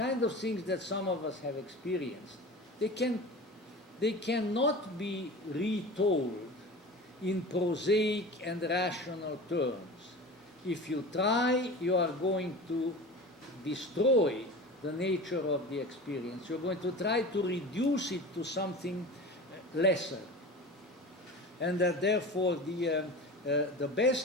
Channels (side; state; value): both; normal; correlation 0.34